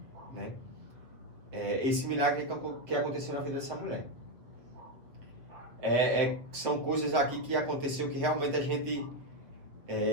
né? Esse milagre que aconteceu na vida dessa mulher. São coisas aqui que aconteceu que realmente a gente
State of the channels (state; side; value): late; left; 7.5 ms